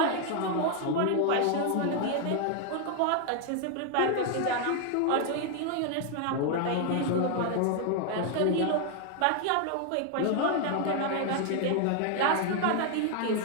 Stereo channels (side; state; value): both; different; correlation 0.00